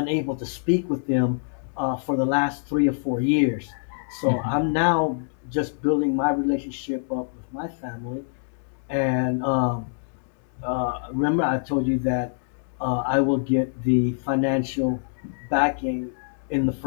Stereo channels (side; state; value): right; silent; digital silence